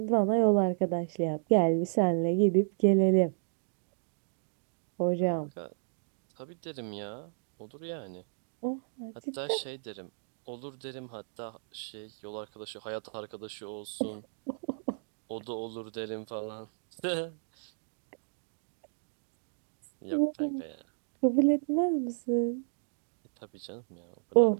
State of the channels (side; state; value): left; silent; digital silence